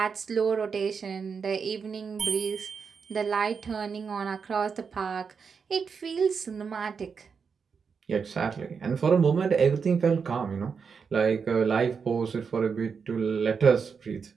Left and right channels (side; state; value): left; quieter; 5.9 dB